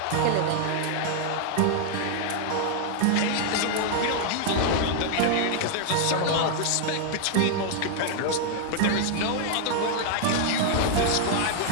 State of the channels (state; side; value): different; both; correlation 0.00